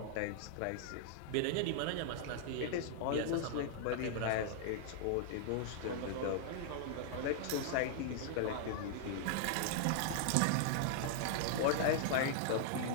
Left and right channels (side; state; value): both; different; correlation -0.01